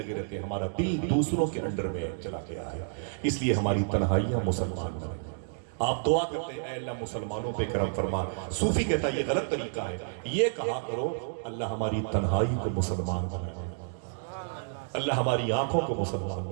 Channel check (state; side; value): silent; left; digital silence